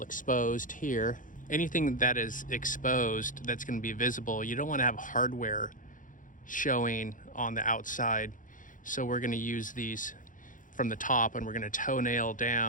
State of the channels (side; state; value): right; late; 0.38 ms